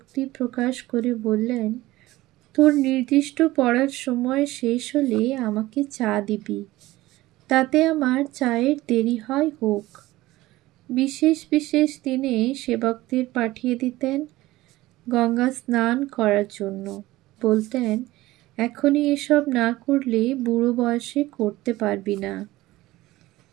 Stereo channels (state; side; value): quieter; left; 17.8 dB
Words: প্রকাশ করে বললেন, তোর নির্দিষ্ট পড়ার সময় শেষ হলে আমাকে চা দিবি, তাতে আমার চায়ের দেরি হয় হোক। বিশেষ বিশেষ দিনে সেবকদের পাঠিয়ে দিতেন গঙ্গা স্নান করার জন্য। বলতেন, এখনই এসব না করলে বুড়ো বয়সে করতে পারবি না।